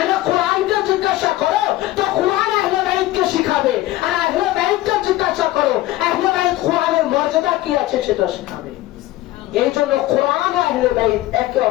কোরআনকে জিজ্ঞাসা করো তো কোরআন আহলে বাইতকে শিখাবে, আর আহলে বাইতকে জিজ্ঞাসা করো আহলে বাইত কোরআনের মর্যাদা কি আছে সেটা শিখাবে। এই জন্য কোরআন ও আহলে বাইত একে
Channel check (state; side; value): quieter; right; 16.2 dB